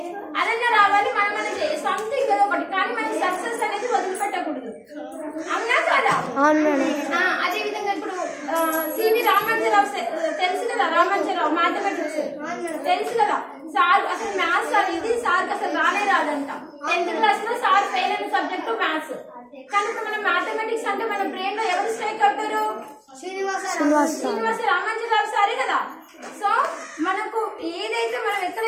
అదన్నా రావాలి. మనం సంథింగ్ ఏదో ఒకటి, కానీ మనకి సక్సెస్ అనేది వదిలిపెట్టకూడదు. అవునా కదా? అదే విధంగా ఇప్పుడు సివి రామాంజరావు తెలుసు కదా. రామాంజరావు మ్యాథమెటిక్స్ తెలుసు కదా. సార్ అసలు మ్యాథ్స్ అనేది సార్కి అసలు రానే రాదంట. 10th క్లాస్ లో సార్ ఫెయిల్ అయిన సబ్జెక్టు మ్యాథ్స్. కానీ ఇప్పుడు మన మ్యాథమెటిక్స్ అంటే మన బ్రెయిన్ లో ఎవరు స్ట్రైక్ అవుతారు? శ్రీనివాస రామాంజరావు సారే కదా. సో మనకు ఏదైతే మనం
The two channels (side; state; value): both; identical; correlation 1.00